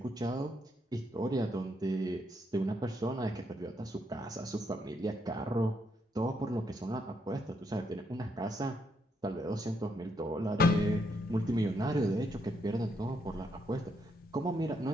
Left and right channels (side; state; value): both; normal; correlation 0.76